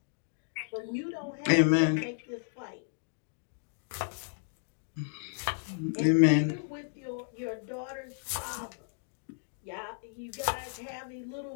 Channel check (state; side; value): silent; right; digital silence